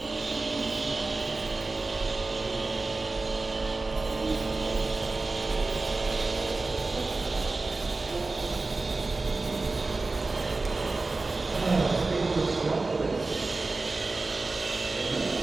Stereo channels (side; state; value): left; quieter; 3.5 dB